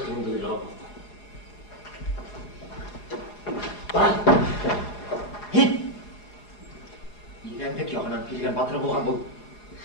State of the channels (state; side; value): late; right; 4.8 ms